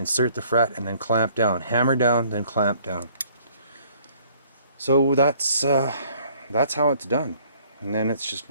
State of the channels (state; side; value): inverted; both; correlation -0.59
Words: the fret, and then clamp down. Hammer down, then clamp down. So that's how it's done. And then it's just